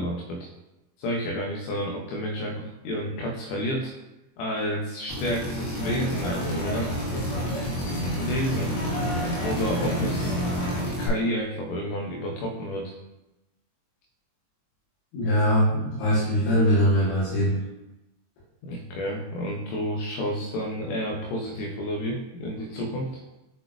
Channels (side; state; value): right; late; 22 ms